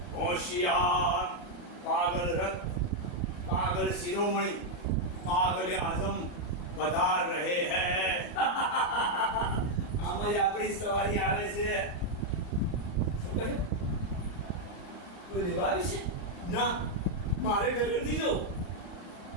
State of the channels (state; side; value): late; right; 33 ms